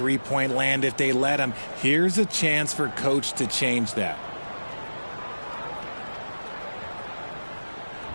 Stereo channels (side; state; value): both; inverted; correlation -1.00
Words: land if they let him. Here's a chance for Coach to change that.